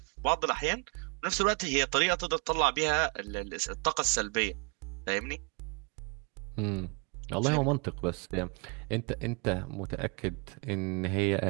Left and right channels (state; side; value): quieter; left; 32.3 dB